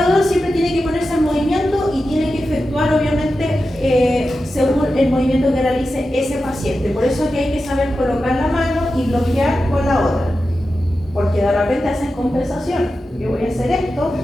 siempre tiene que ponerse en movimiento y tiene que efectuar, obviamente, según el movimiento que realice ese paciente. Por eso es que hay que saber colocar la mano y bloquear con la otra. Porque de repente hacen compensación. Yo voy a hacer esto,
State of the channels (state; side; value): normal; both; correlation 0.91